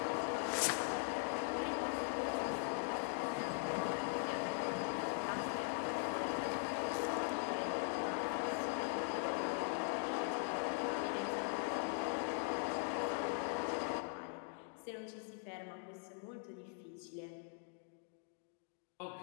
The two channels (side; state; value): right; silent; 50 dB below the other